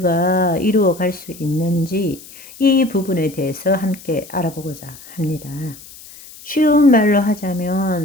이루어 갈 수 있는지 이 부분에 대해서 함께 알아보고자 합니다. 쉬운 말로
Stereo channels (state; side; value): noise; left; hiss, 19 dB below the sound